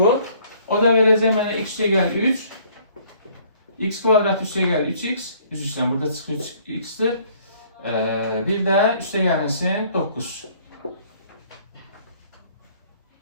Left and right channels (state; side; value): inverted; both; correlation -0.59